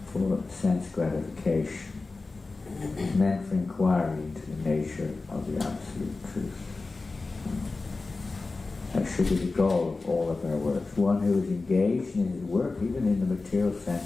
for sense gratification. It's meant for inquiry into the nature of the absolute truth. That should be the goal of all of our works. One who is engaged in his work, even in the material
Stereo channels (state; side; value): quieter; right; 3.7 dB